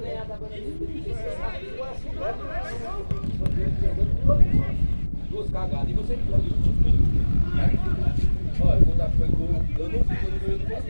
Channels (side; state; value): both; inverted; correlation -1.00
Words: agora. Duas cagadas. E você que olha, quando foi gol, eu não fico no meio do posto